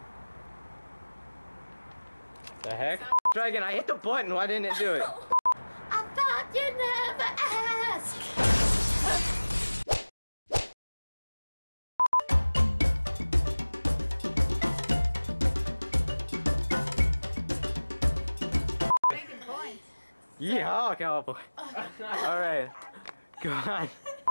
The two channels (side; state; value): both; inverted; correlation -1.00